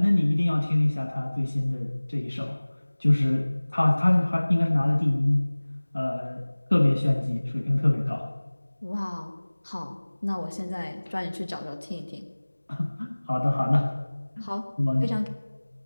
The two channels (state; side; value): inverted; both; correlation -1.00